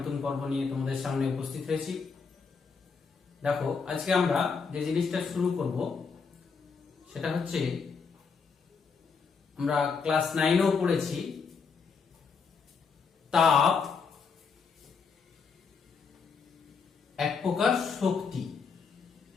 পর্ব নিয়ে তোমাদের সামনে উপস্থিত হয়েছি। দেখো, আজকে আমরা যে জিনিসটা শুরু করব সেটা হচ্ছে, আমরা ক্লাস 9এও পড়েছি তাপ এক প্রকার শক্তি,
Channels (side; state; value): right; quieter; 5.4 dB